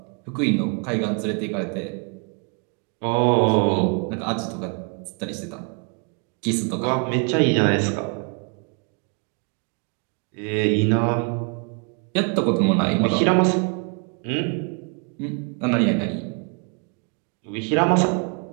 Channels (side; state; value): left; quieter; 37.4 dB